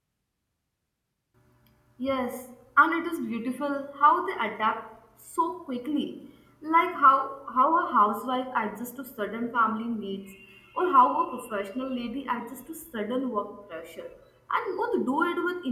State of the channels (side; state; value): both; identical; correlation 1.00